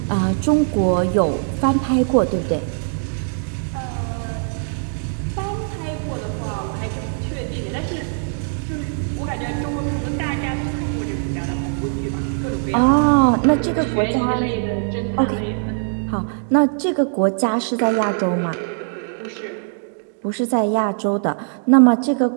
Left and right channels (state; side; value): silent; left; digital silence